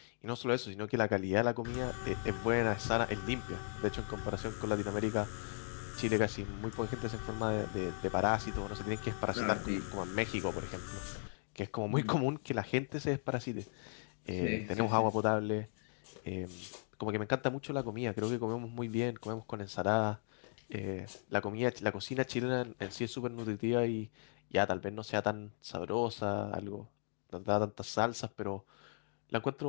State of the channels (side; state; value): right; silent; digital silence